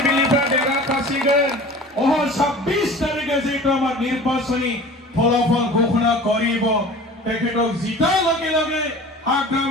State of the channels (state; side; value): normal; both; correlation 0.41